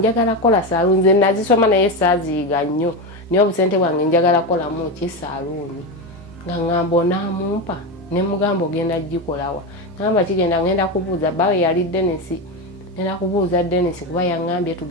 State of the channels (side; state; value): both; normal; correlation 0.15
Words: kola saaluuni nze nazisoma naye saaziyiga nnyo naye obusente bwange njagala kolamu ki saaluuni nga ŋŋamba onaamumpa ne mugamba ogenda gikolawa naŋŋamba kigenda ngenda kubuuza bawe yali Denisi ngenda kubuuza Denisi kuba yaŋŋambye